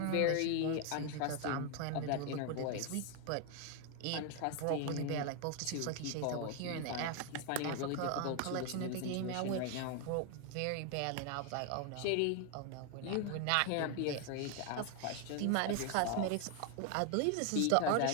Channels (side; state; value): both; different; correlation 0.01